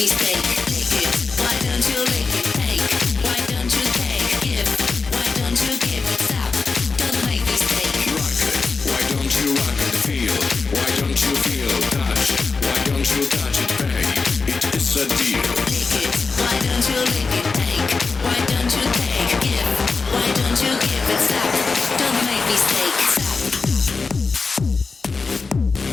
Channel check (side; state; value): right; quieter; 4.4 dB